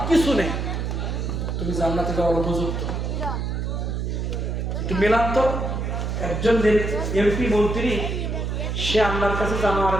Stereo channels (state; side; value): noise; right; hum, 2 dB below the sound